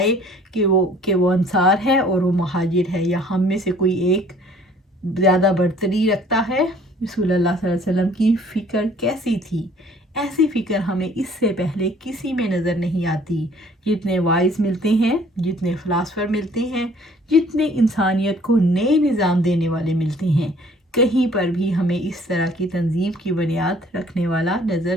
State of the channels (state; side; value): normal; both; correlation 0.55